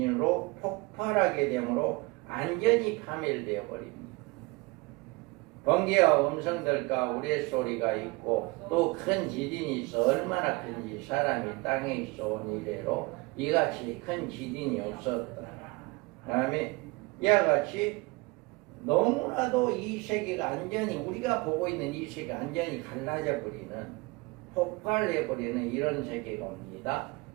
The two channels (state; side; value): quieter; left; 25.5 dB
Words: 폭발하게 되므로 완전히 파멸되어 버립니다. 번개와 음성들과 우레소리가 있고 또 큰 지진이 있어 얼마나 큰지 사람이 땅에 있어 온 이래로 이같이 큰 지진이 없었다. 그 다음에 이와 같이 너무나도 이 세계가 완전히 우리가 보고 있는 이 세계가 완전히 갈라져 버리는 폭발해 버리는 이런 세계가 옵니다.